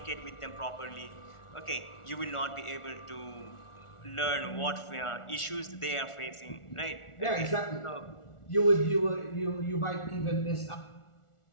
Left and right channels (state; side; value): late; right; 1.4 ms